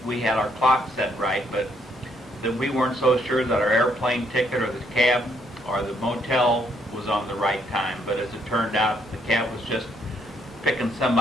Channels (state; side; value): normal; both; correlation 0.71